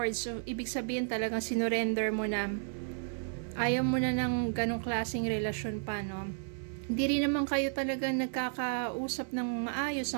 So, ibig sabihin talagang sinurrender mo na. Ayaw mo na ng ganong klaseng relasyon pa, no? Hindi rin naman kayo talaga nagkakausap ng maayos,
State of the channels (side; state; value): left; silent; 56 dB below the other